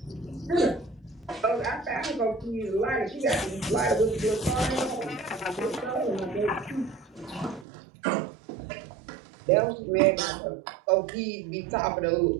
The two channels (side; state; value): left; drops out; at 7.7 s